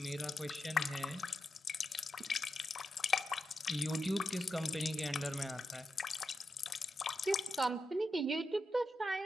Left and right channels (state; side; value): normal; both; correlation 0.87